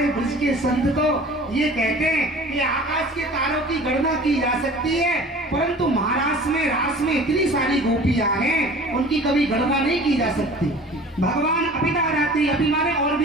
ब्रज के संत तो ये कहते हैं कि आकाश के तारों की गणना की जा सकती है, परंतु महाराष्ट्र में रास में इतनी सारी गोपियां हैं उनकी कभी गणना नहीं की जा सकती। भगवान अपिता रात्रि, अभी माने और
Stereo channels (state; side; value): normal; both; correlation 0.44